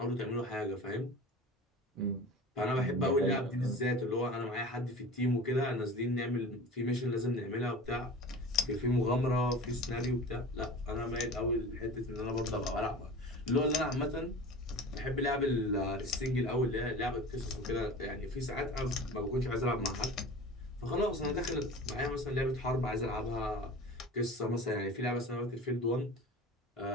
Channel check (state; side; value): normal; both; correlation 0.37